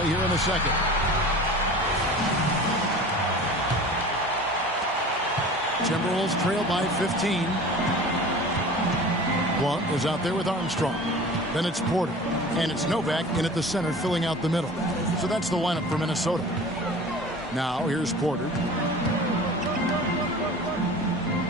here in the second. Timberwolves trail by 15. Blunt is out there with Armstrong. Then it's Porter. And it's Novak in at the center filling out the middle. So that's the lineup for Minnesota. Now here's Porter.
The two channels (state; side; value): normal; both; correlation 0.39